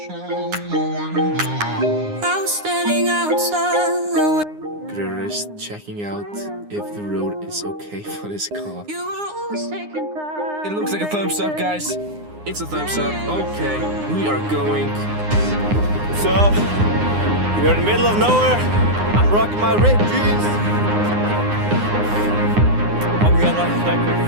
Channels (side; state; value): left; late; 9.7 ms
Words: was standing outside. We're just checking out if the road is okay for this car. You were always taking time. It looks like a thumbs up, guys. It's a thumbs up. Okay, we are going. So, we're in the middle of nowhere. I'm rocking my ripped jeans. I'm gonna